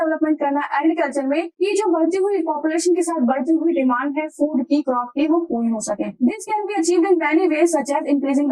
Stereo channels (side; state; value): both; identical; correlation 1.00